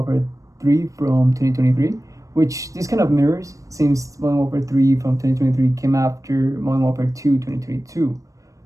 3 from 2023, which this kind of mirrors since Modern Warfare 3 from 2023 came after Modern Warfare 2 2022.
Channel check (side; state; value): left; late; 0.16 ms